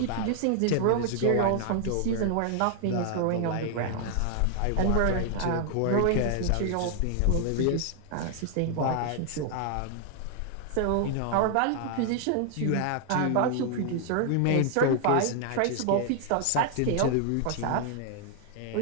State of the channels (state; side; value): different; both; correlation 0.00